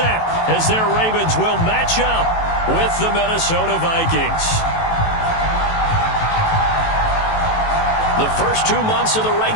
as their Ravens will match up with the Minnesota Vikings. The first 2 months of the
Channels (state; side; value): late; right; 18 ms